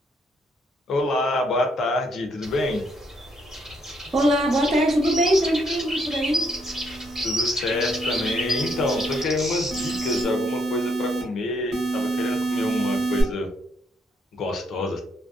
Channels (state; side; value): normal; both; correlation 0.73